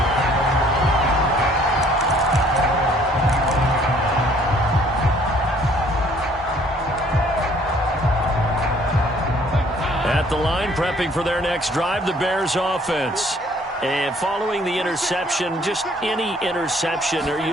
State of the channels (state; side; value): normal; both; correlation 0.59